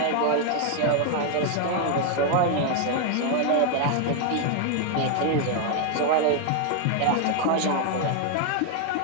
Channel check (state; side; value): different; both; correlation 0.00